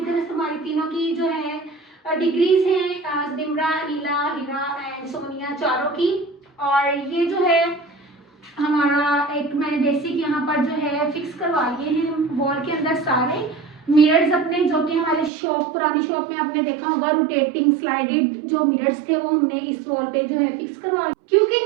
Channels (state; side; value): drops out; left; at 15.3 s